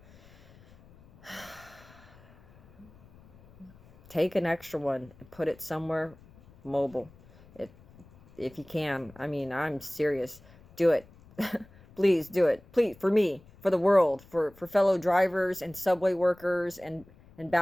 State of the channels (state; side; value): noise; left; rumble, 25 dB below the sound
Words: Take an extra one and put it somewhere mobile. If you can. I'm serious. Do it. Please do it. Please, for me, for the world, for fellow drivers and subway workers and